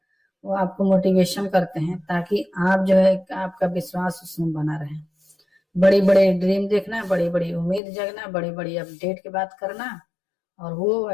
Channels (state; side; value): drops out; right; at 7.8 s